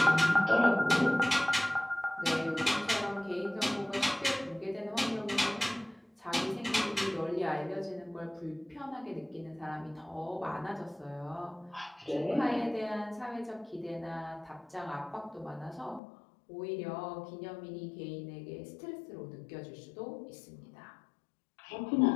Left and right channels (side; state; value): right; drops out; at 16.0 s